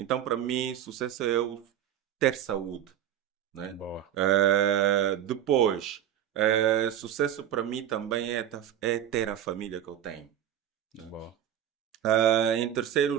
para mim, sucesso é eu ter saúde, né? Boa, Depois, sucesso para mim também é ter a família que eu tenho. boa, Em terceiro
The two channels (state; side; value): quieter; left; 10.5 dB